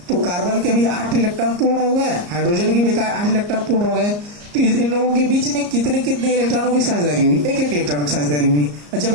तो कार्बन के भी 8 इलेक्ट्रॉन पूर्ण हो गए, हाइड्रोजन के भी 8 इलेक्ट्रॉन पूर्ण हो गए। तो इन लोगों के बीच में कितने कितने इलेक्ट्रॉनों की साझेदारी हुई? एक इलेक्ट्रॉन की साझेदारी हुई। और जब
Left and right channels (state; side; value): late; left; 34 ms